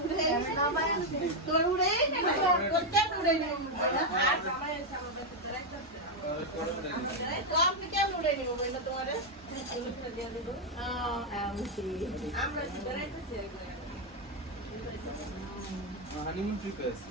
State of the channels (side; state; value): both; normal; correlation 0.02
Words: তোর উড়ে আপনি কেমন উড়ে নিব বললো তোমার হানিমুন ট্রিপ আছে